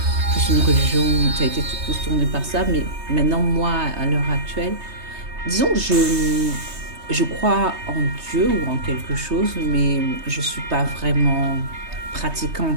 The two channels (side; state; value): left; late; 3.2 ms